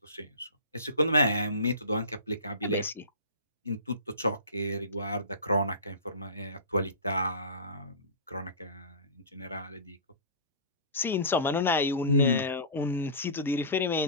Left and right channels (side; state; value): both; inverted; correlation -0.32